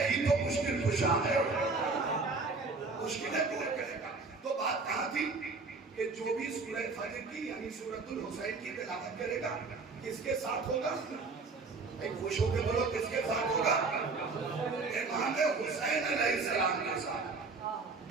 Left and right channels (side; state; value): left; quieter; 4.1 dB